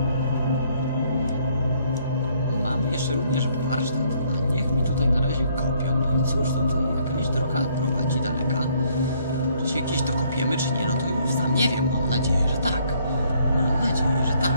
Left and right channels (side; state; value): both; inverted; correlation -0.66